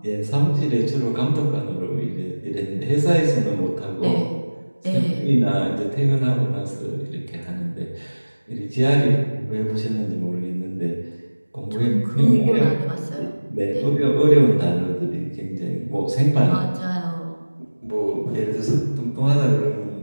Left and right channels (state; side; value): inverted; both; correlation -1.00